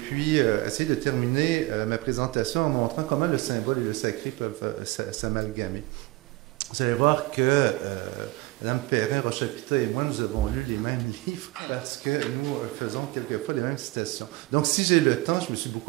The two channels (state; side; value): quieter; left; 20.7 dB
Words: puis essayer de terminer ma présentation en montrant comment le symbole et le sacré peuvent s'amalgamer. Vous allez voir que Mme Perrin, Rochette et moi, nous avons lu les mêmes livres parce que nous faisons quelquefois les mêmes citations. Donc, si j'ai le temps, je me suis